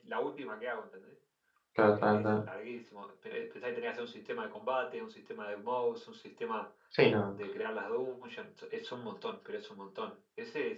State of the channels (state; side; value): identical; both; correlation 1.00